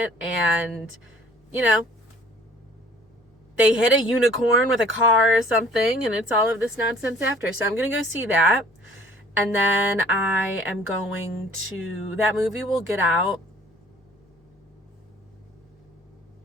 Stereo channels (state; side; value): normal; both; correlation 0.53